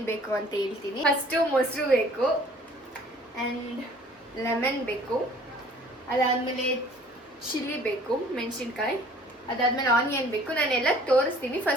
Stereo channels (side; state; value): both; normal; correlation 0.53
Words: ಬೇಕು ಅಂತ ಹೇಳ್ತೀನಿ. ಫಸ್ಟು ಮೊಸರು ಬೇಕು ಆ್ಯಂಡ್ ಲೆಮನ್ ಬೇಕು, ಅದಾದಮೇಲೆ ಚಿಲ್ಲಿ ಬೇಕು, ಮೆಣಸಿನ್ಕಾಯಿ, ಅದಾದ್ಮೇಲೆ ಆನಿಯನ್ ಬೇಕು. ನಾನೆಲ್ಲ ತೋರಿಸ್ತೀನಿ.